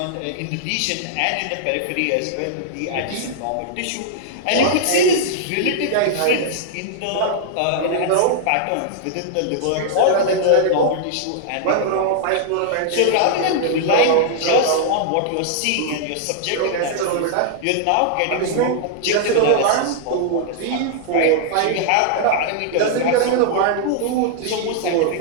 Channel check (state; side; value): different; both; correlation -0.01